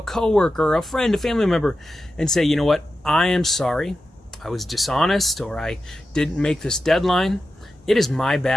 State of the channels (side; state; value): both; normal; correlation 0.91